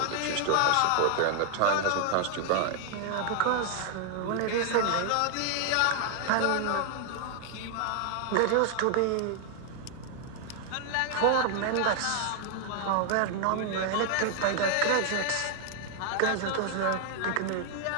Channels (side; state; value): both; different; correlation 0.00